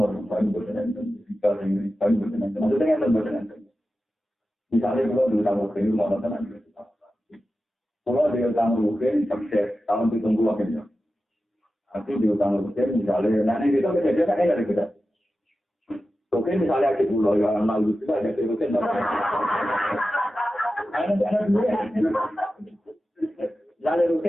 buat nanti. Jika ingin buat nanti, maksudnya buat nanti. Misalnya kalau dulu tamu kini mau nonton kalau dia tamu mungkin sukses tahun ditunggu akhirnya. Nanti di utang rupiah misalnya, nanti kita kejadian kan ada kita. Oke misalnya di pulau yang lalu kita ada di rupiah. Anak-anak dulu ya. Misalnya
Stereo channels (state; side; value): normal; both; correlation 0.93